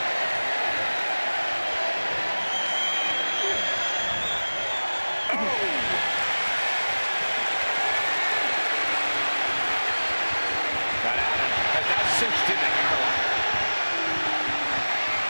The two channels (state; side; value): inverted; both; correlation -1.00